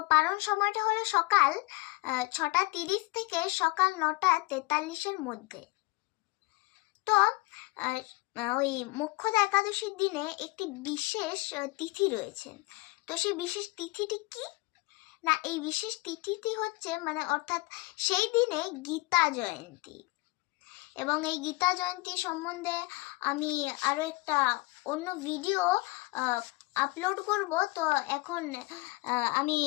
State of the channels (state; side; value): quieter; right; 23.4 dB